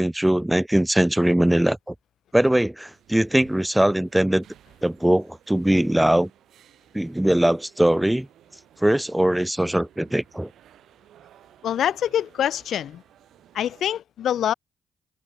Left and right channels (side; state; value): both; normal; correlation 0.95